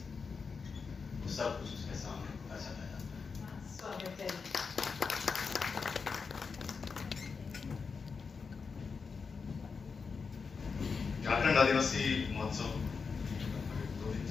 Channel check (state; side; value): quieter; right; 5.2 dB